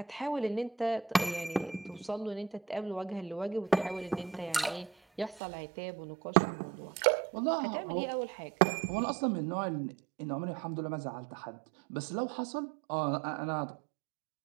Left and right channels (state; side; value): drops out; left; at 5.4 s